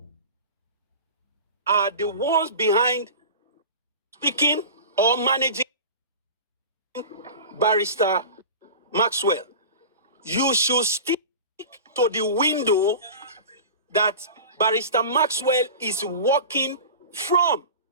are the ones behind speaking or managing Barrister Maxwell. You should stick to the window that Barrister Maxwell is working from.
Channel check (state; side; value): inverted; both; correlation -0.34